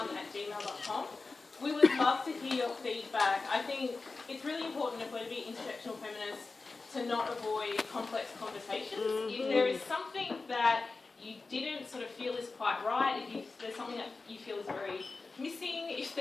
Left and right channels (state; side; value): quieter; right; 3.9 dB